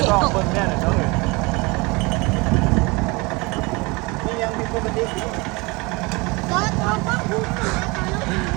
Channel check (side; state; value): left; quieter; 25.9 dB